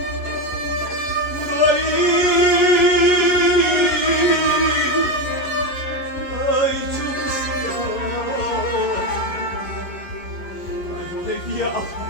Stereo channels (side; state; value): right; late; 11 ms